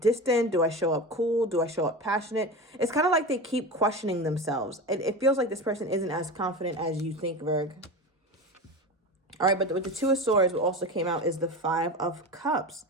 Do I show up cool? Do I show up passionate? It's kind of like they keep questioning themselves. It feels like this person isn't as confident as you think, Virg. All right, but with the Two of Swords, what also came out is the Five of Cups.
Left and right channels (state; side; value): normal; both; correlation 0.26